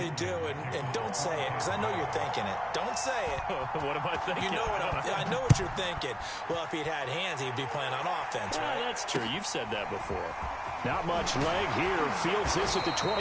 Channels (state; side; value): identical; both; correlation 1.00